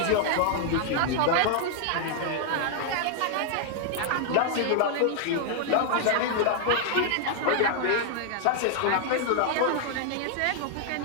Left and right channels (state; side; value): different; both; correlation 0.00